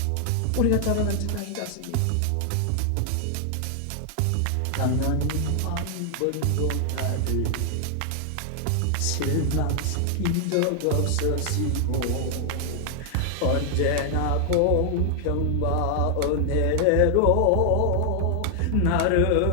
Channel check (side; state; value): both; different; correlation 0.00